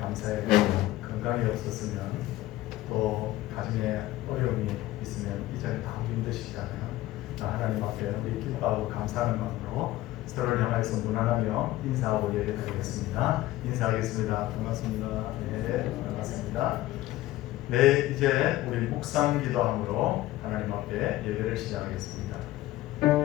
감사해 건강이 없었으면 또 가정에 어려움이 있으면 이 자리에 다 힘드시잖아요. 하나님 앞에 우리 기뻐하고 감사하는 마음으로 서로를 향해서 무난하며 인사하고 예배드리겠습니다. 인사하겠습니다. 반갑습니다. 네, 반갑습니다. 네, 이제 우리 묵상 기도함으로 하나님 앞에 예배를 시작하겠습니다.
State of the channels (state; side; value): quieter; right; 16.2 dB